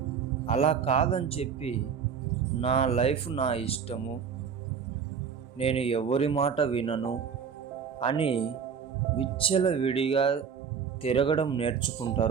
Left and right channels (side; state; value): left; quieter; 6.8 dB